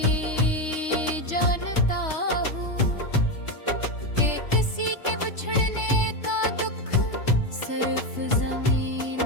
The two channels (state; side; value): late; right; 3.3 ms